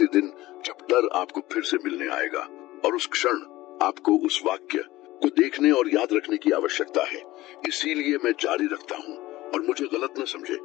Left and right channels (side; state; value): right; quieter; 17.6 dB